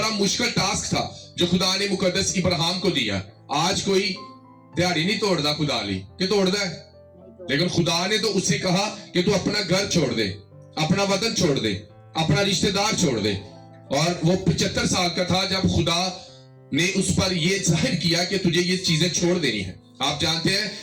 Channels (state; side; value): identical; both; correlation 1.00